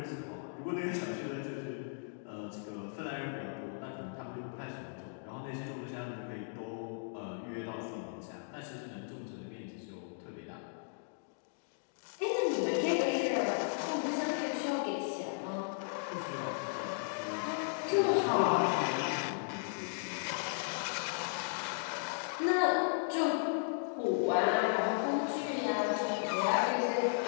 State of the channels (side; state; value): right; silent; digital silence